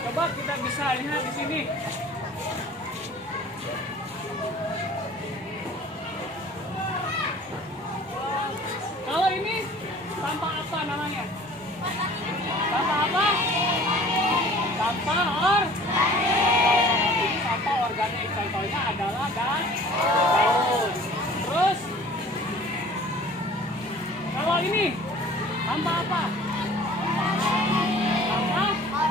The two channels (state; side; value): normal; both; correlation 0.48